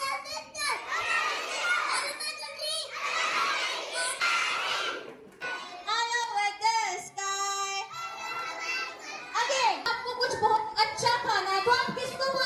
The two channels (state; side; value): identical; both; correlation 1.00